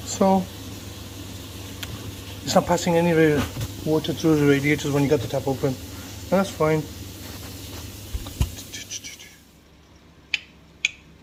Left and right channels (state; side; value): identical; both; correlation 1.00